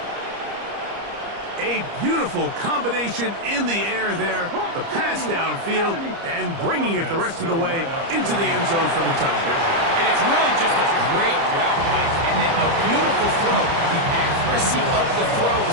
A beautiful combination in the air there, the pass downfield, and bringing it the rest of the way into the end zone for the touchdown. And it's really just a great route, Mike, and then a beautiful throw. The accuracy of the throw is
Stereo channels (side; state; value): left; late; 30 ms